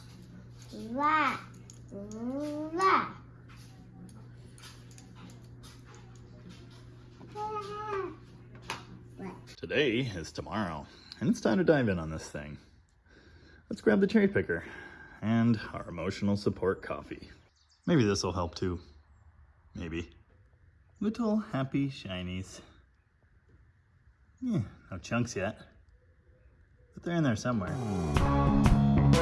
Today is tomorrow, and it's time to dive in on this thing. Let's grab the cherry picker and our emotional support coffee. Maybe this will help too. Maybe. Little happy shinies. Yeah, no chunks yet, but they're in there somewhere.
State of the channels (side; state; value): both; identical; correlation 1.00